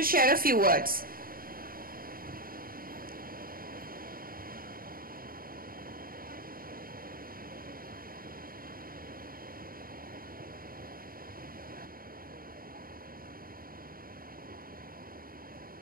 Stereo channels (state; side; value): late; left; 0.42 ms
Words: share a few words.